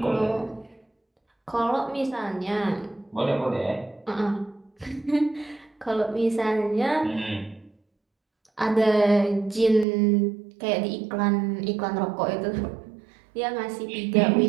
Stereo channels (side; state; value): left; drops out; at 9.9 s